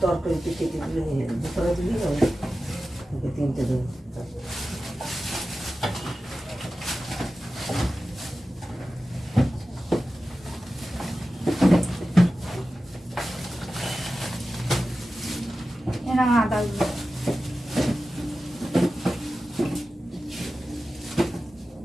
তরকারিতে কেটে দিলে দুপুরে দিলি হবে, তিনটে দেবো।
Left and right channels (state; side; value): normal; both; correlation 0.94